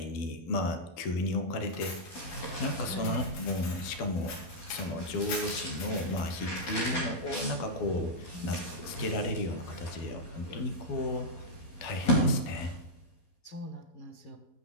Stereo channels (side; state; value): right; late; 12 ms